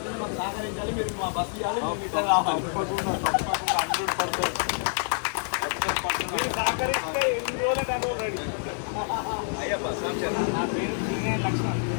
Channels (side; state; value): right; silent; digital silence